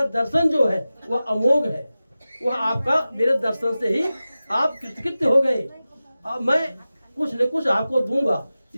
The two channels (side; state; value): both; inverted; correlation -0.95